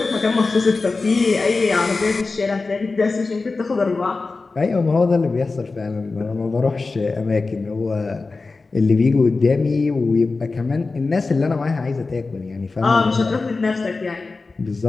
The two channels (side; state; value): right; quieter; 3.9 dB